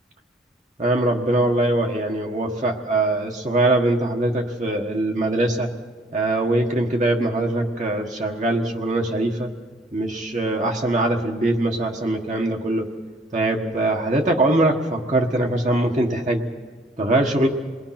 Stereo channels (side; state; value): both; normal; correlation 0.58